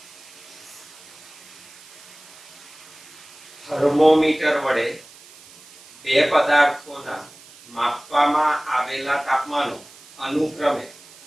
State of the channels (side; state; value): right; noise; hiss, 22 dB below the sound